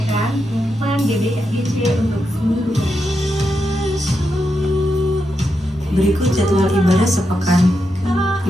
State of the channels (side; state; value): both; normal; correlation 0.85